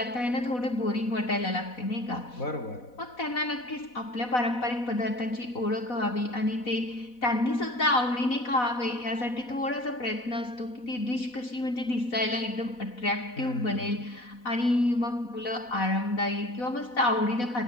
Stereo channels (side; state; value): right; late; 4.1 ms